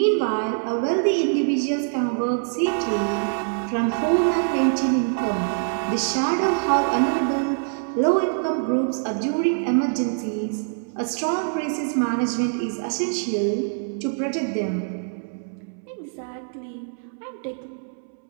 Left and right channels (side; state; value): left; silent; 62 dB below the other